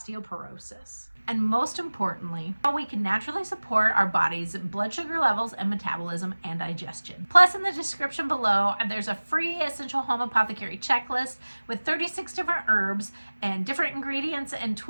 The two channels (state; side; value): inverted; both; correlation -1.00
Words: And most importantly, how we can naturally support our body's blood sugar levels and metabolism and digestion. Plus, in the description below, there's a free Essential Home Apothecary checklist with 36 different herbs and different ingredients and